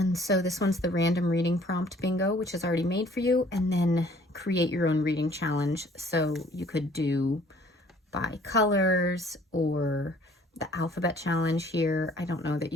so this one's the random reading prompt bingo, which is already made for you. And then create your own reading challenge. So you could do by colors or the alphabet challenge here. I don't know that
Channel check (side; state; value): both; normal; correlation 0.56